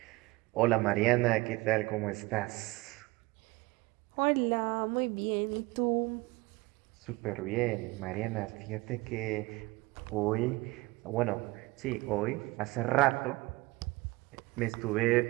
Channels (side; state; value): left; quieter; 22.0 dB